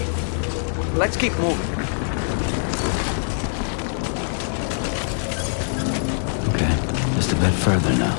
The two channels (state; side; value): silent; right; 63 dB below the other